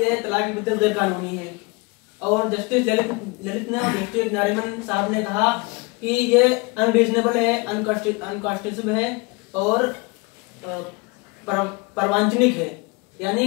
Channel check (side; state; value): right; quieter; 27.4 dB